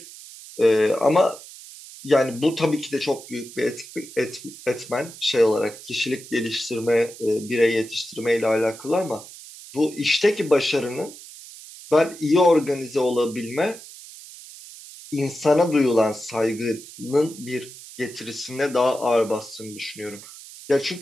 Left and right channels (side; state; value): right; noise; hiss, 16 dB below the sound